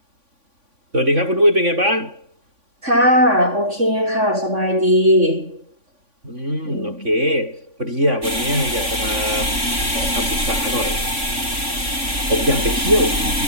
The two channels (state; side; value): late; left; 3.5 ms